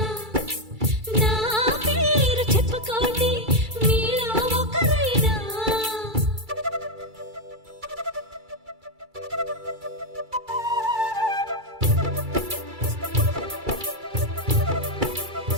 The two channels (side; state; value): left; late; 2.3 ms